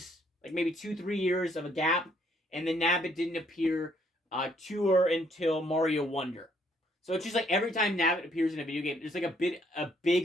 like maybe 2-3 years of a gap, and then Nabbit didn't appear Tour until Mario Wonder. So it's just like every time Nabbit appears in a video game, there's like a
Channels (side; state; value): both; normal; correlation 0.67